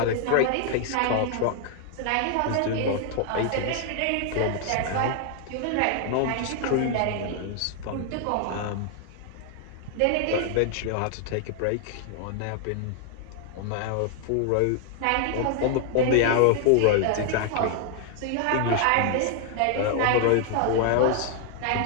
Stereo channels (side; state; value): both; different; correlation 0.00